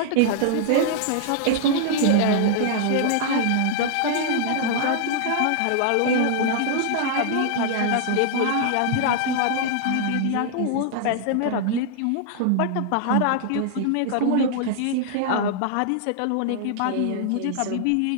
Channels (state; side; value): different; both; correlation -0.01